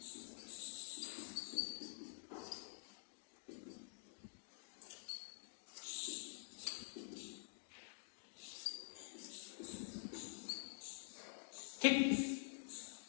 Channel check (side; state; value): right; silent; digital silence